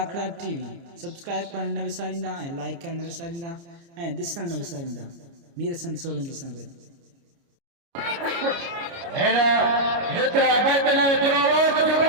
टीवी सब्सक्राइब करणु न विसारींदा ऐं लाइक करणु न विसारींदा ऐं ॾिसणु न विसारींदा। मीर हसन सोलंकी सां गॾु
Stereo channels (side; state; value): left; late; 29 ms